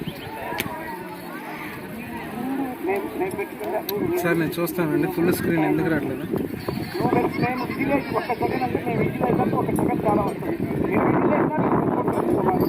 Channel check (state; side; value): identical; both; correlation 1.00